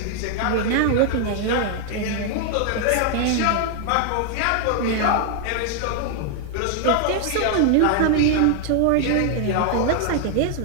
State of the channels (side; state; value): both; different; correlation 0.00